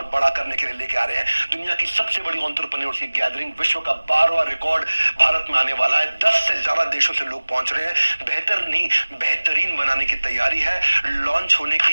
बड़ा करने के लिए लेके आ रहे हैं। दुनिया की सबसे बड़ी एंटरप्रेन्योर्स की गैदरिंग, विश्व का 12वां रिकॉर्ड भारत में आने वाला है। 10 से ज्यादा देशों से लोग पहुंच रहे हैं। बेहतर नहीं, बेहतरीन बनाने की तैयारी है। लॉन्च होने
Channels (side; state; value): both; inverted; correlation -1.00